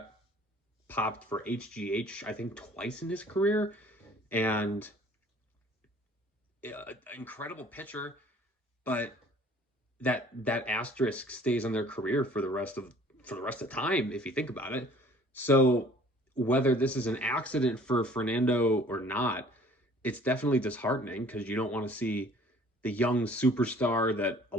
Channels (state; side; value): normal; both; correlation 0.53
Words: popped for HGH, I think, twice in his career, and incredible pitcher, but that asterisk stays on their career for the rest of time, if you think about it. So whether this is an accident for Fernando or not, it's definitely disheartening, because you don't want to see the young superstar that a